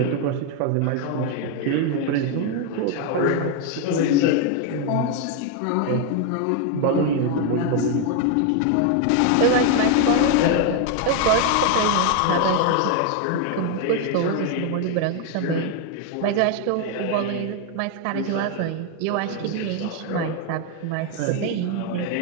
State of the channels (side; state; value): both; different; correlation 0.01